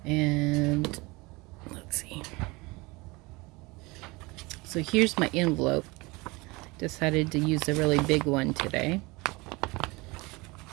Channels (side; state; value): left; quieter; 24.3 dB